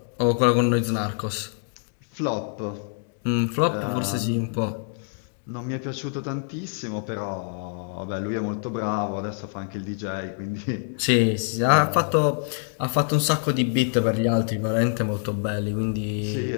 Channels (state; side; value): silent; right; 61 dB below the other